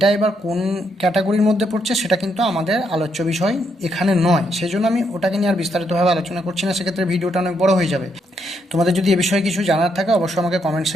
এবার কোন ক্যাটাগরির মধ্যে পড়ছে সেটা কিন্তু আমাদের আলোচ্য বিষয় এখানে নয়, সেই জন্য আমি ওটাকে নিয়ে আর বিস্তারিতভাবে আলোচনা করছি না, সেক্ষেত্রে ভিডিওটা অনেক বড় হয়ে যাবে। তোমাদের যদি এ বিষয়ে কিছু জানার থাকে অবশ্যই আমাকে কমেন্ট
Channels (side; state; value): both; normal; correlation 0.76